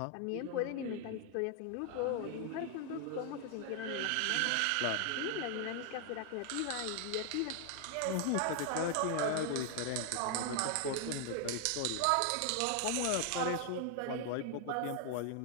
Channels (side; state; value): both; different; correlation 0.00